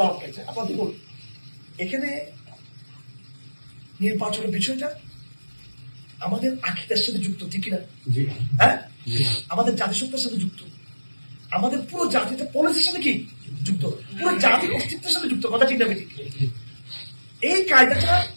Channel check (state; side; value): inverted; both; correlation -1.00